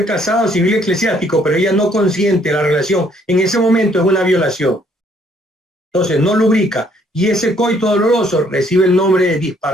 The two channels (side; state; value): both; normal; correlation 0.65